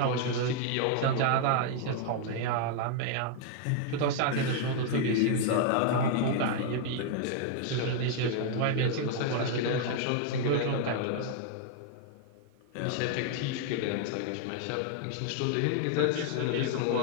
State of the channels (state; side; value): different; both; correlation 0.00